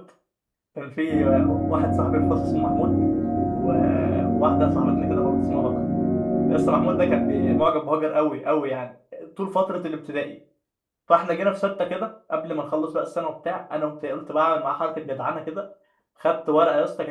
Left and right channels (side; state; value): both; identical; correlation 1.00